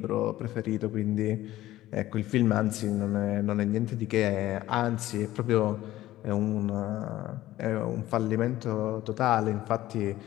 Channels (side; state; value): right; quieter; 15.2 dB